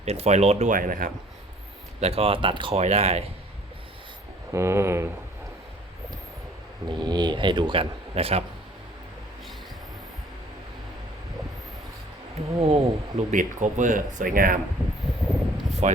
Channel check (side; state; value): both; normal; correlation 0.55